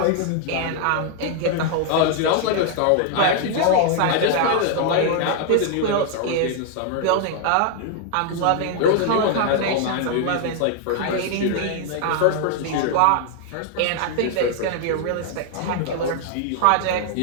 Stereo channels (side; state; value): both; different; correlation 0.00